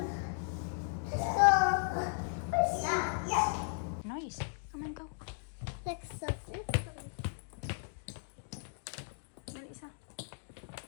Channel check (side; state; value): right; silent; digital silence